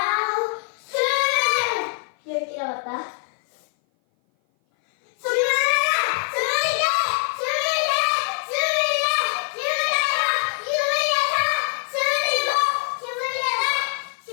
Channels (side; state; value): right; silent; 57 dB below the other